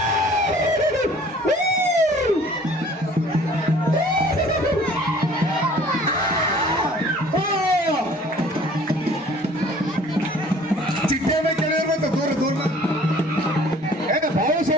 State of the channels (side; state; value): both; normal; correlation 0.52